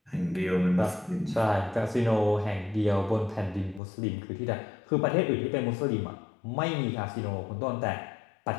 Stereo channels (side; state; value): right; drops out; at 3.8 s